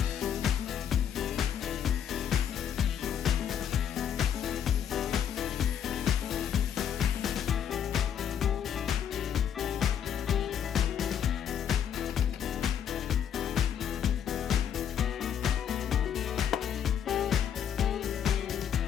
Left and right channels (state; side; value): quieter; right; 8.8 dB